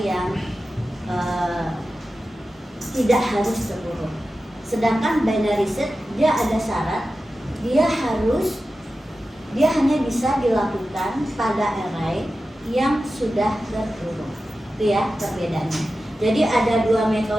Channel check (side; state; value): both; normal; correlation 0.93